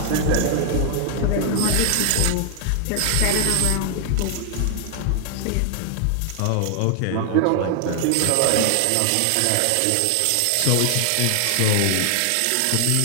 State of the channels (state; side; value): different; both; correlation 0.00